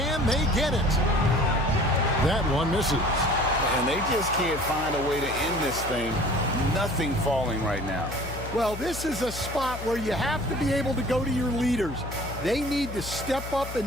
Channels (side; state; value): left; noise; hum, 10 dB below the sound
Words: they get it? That one misses. And they just can't find a way to end this thing. Nothing falling right now. Well, this is a spot where you have to be able to go to your leaders. They need to step up